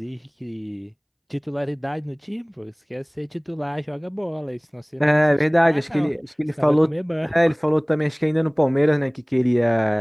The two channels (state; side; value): identical; both; correlation 1.00